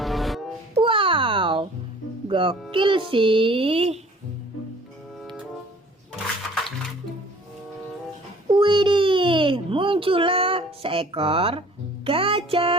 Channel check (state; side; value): normal; both; correlation 0.51